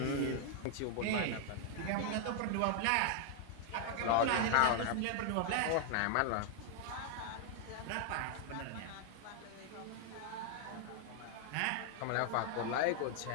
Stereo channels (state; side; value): different; both; correlation 0.00